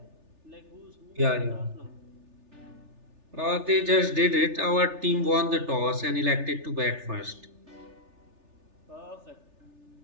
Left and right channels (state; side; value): late; left; 3.4 ms